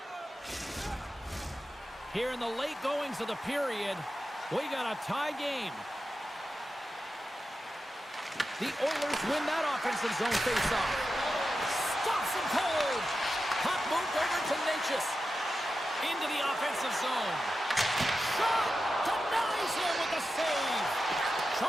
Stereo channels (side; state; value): both; normal; correlation 0.91